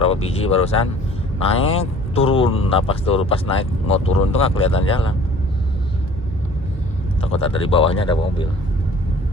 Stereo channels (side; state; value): both; normal; correlation 0.50